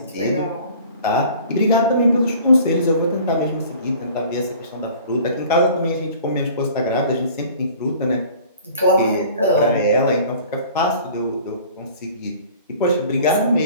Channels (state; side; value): inverted; both; correlation -0.48